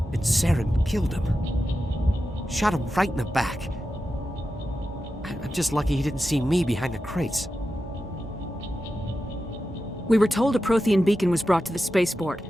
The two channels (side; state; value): both; normal; correlation 0.91